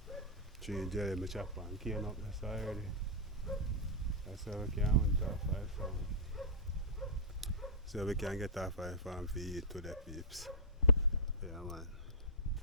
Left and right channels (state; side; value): normal; both; correlation -0.10